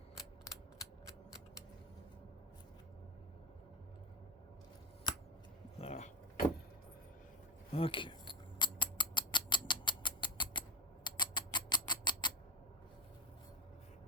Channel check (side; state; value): both; normal; correlation 0.13